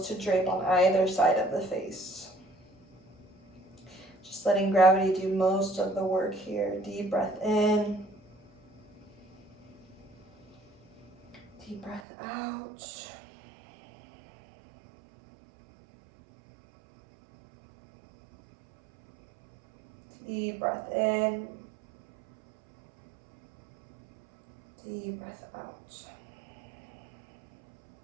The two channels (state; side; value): drops out; left; at 12.0 s